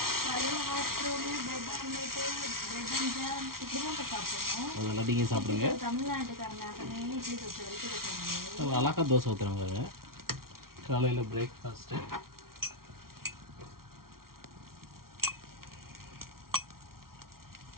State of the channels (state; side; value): late; left; 0.93 ms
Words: காலையில் hot road, bread omelette, bread and jam இப்படி தான் சாப்பிடுவோம். அதெல்லாம் நீங்கள் சாப்பிடுங்க. தமிழ்நாட்டுக்காரனாகவே இட்லி தோசை வரைக்கும் வச்சுருங்க. அழகா தோசை ஊற்றுறாங்க காலையில் பிரேக்ஃபாஸ்ட்டு.